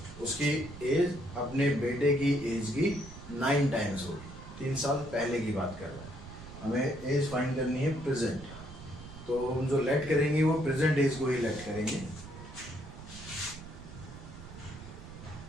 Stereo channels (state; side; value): noise; right; rumble, 14 dB below the sound